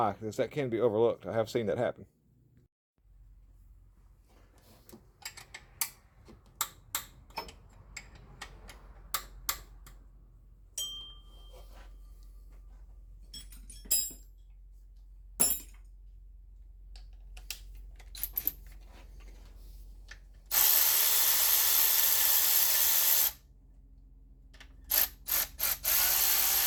because that can be overlooked. I have seen that happen.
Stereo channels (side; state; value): both; identical; correlation 1.00